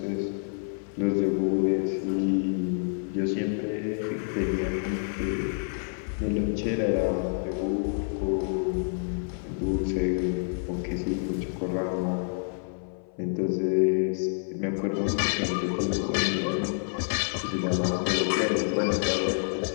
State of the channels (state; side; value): silent; right; 58 dB below the other